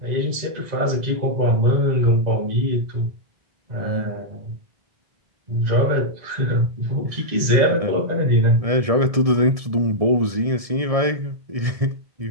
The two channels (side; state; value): left; late; 1.7 ms